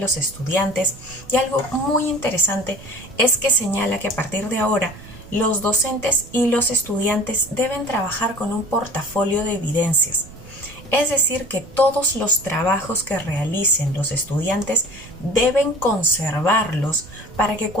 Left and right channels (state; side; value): noise; right; rumble, 19 dB below the sound